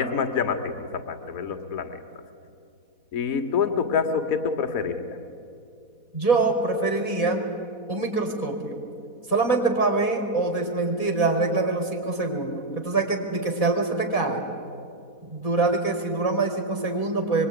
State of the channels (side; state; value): right; late; 4.1 ms